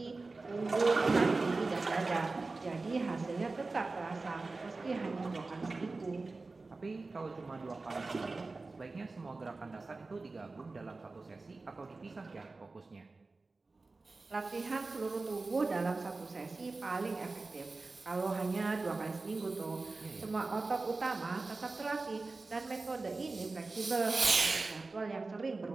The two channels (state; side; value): quieter; left; 3.6 dB